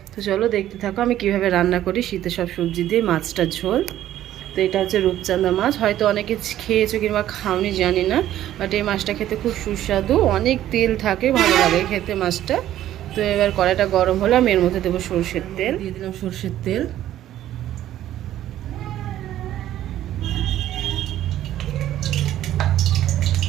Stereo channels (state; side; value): quieter; left; 12.7 dB